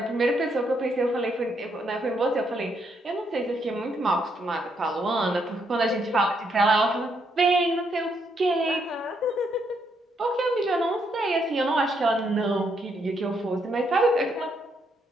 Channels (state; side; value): normal; both; correlation 0.75